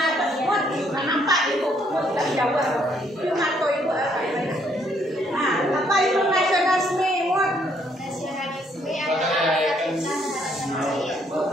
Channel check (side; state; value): both; normal; correlation 0.69